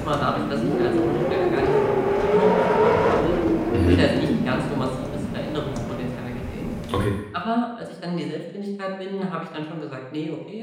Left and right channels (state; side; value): identical; both; correlation 1.00